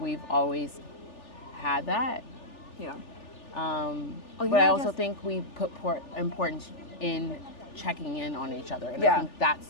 always had that. Yeah. But I also think we put importance in checking in on each other, and I think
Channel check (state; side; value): late; right; 3.4 ms